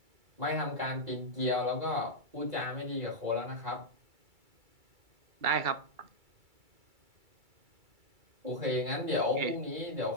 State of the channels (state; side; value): late; left; 2.3 ms